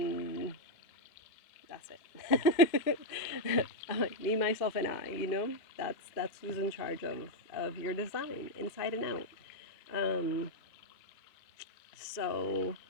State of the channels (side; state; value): right; late; 2.5 ms